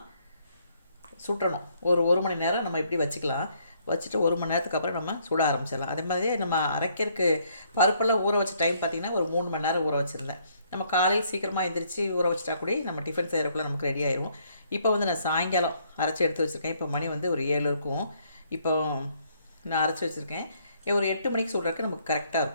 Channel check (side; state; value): both; inverted; correlation -0.68